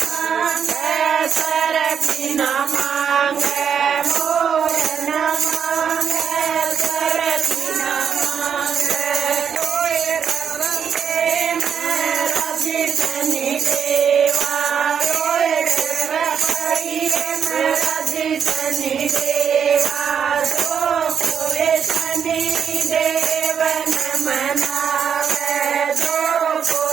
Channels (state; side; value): quieter; left; 7.5 dB